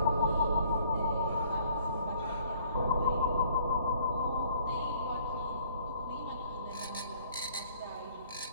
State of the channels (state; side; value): inverted; both; correlation -0.58